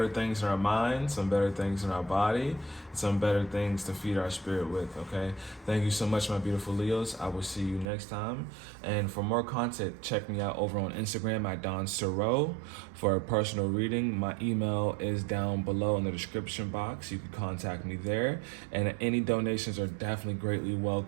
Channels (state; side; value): drops out; left; at 7.9 s